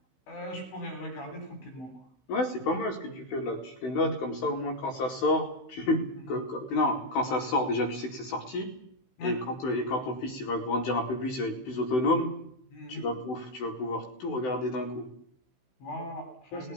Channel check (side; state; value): right; late; 16 ms